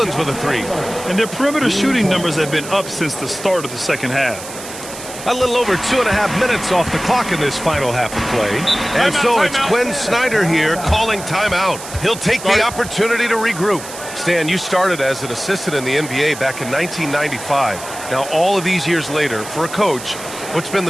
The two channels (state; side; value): noise; right; hiss, 12 dB below the sound